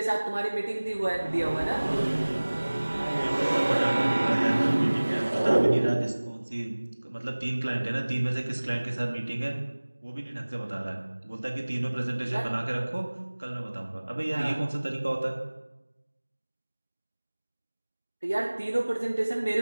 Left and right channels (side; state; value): both; inverted; correlation -1.00